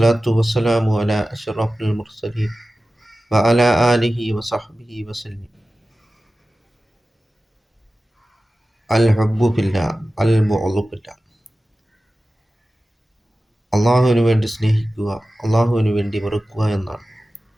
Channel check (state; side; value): normal; both; correlation 0.95